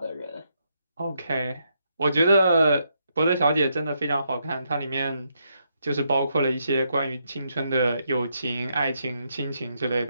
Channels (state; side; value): inverted; both; correlation -0.78